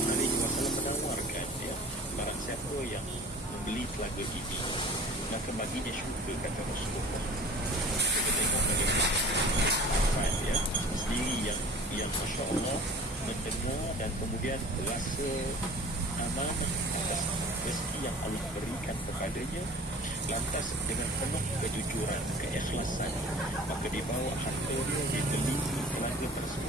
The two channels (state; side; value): normal; both; correlation 0.43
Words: menawarkan barang siapa yang membeli telaga ini maka baginya syurga, kata Rasulullah. Kita tengok bagaimana sendiri yang Masya Allah mendengar dan kemudian rasa amanah atas rezeki yang Allah berikan kepadanya, lantas dengan penuh kejujuran, keikhlasan, maka dibawa harta dia, dibeli telaga